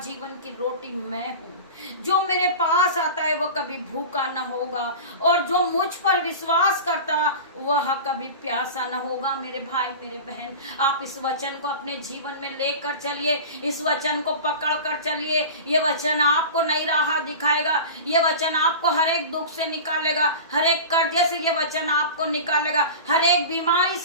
की रोटी मैं हूँ, जो मेरे पास आता है वह कभी भूखा न होगा, और जो मुझ पर विश्वास करता वह कभी प्यासा न होगा। मेरे भाई मेरे बहन, आप इस वचन को अपने जीवन में लेकर चलिए, इस वचन को पकड़ कर चलिए। ये वचन आपको नई राह दिखाएगा, ये वचन आपको हर एक दुख से निकालेगा, हर एक कर्जे से ये वचन आपको निकालेगा, हर एक बीमारी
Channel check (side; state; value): both; inverted; correlation -0.32